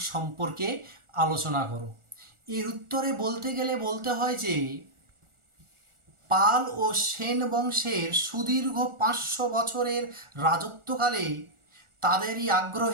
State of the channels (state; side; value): late; left; 1.4 ms